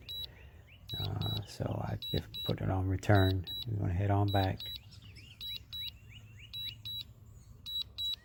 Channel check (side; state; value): both; identical; correlation 1.00